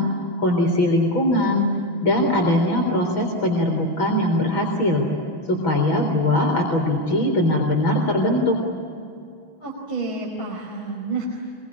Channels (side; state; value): right; late; 6.1 ms